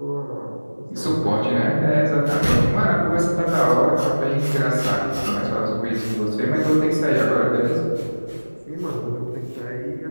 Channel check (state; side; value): inverted; both; correlation -1.00